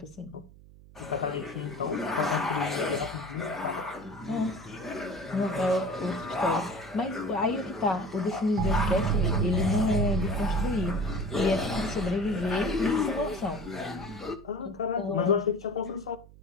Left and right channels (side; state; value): right; noise; hum, 22 dB below the sound